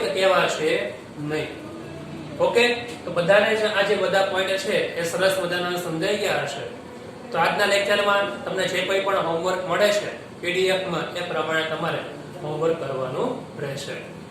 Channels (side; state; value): both; identical; correlation 1.00